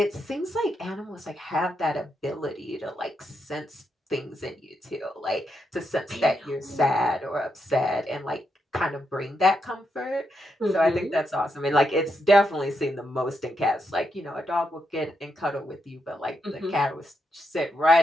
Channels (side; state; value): both; normal; correlation 0.82